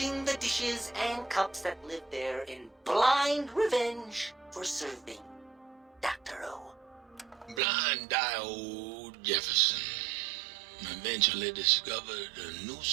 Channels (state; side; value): drops out; left; at 7.6 s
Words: the dishes and cups that lived there in blind revenge for serving Dr. O. Blind-eye old Jefferson eventually discovered a new